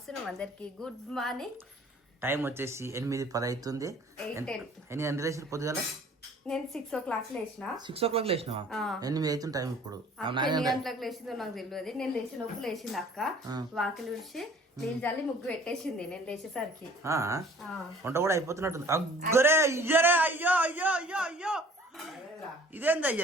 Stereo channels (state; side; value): normal; both; correlation 0.51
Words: అందరికి గుడ్ మార్నింగ్. టైం వచ్చేసి 8:10 అవుతుంది. ఎన్ని గంటలు లేచిన పొద్దుగాల? నేను 6 o'clock లేచిన. 6 o'clock లేచినావా? 8 అవుతుంది టైం ఇప్పుడు. ఎన్ని గంటలకు లేచిందో నాకు తెలియదు. నేను లేచిన లోపు లేచింది అక్క. వాకిలి విడిచి నీళ్ళు చల్లి ముగ్గు పెట్టేసింది నేను లేచేసరికి. వంట కూడా అయిపోతున్నట్టుంది. అగ్గరే ఇయ్యరే, అయ్యో అయ్యో అయ్యో అయ్యో, ఇదేంది